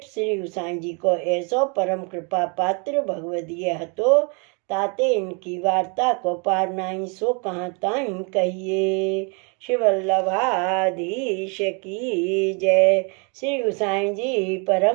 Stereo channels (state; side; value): quieter; left; 34.9 dB